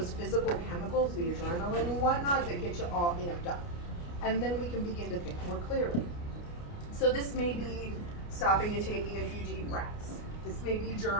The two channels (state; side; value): late; right; 29 ms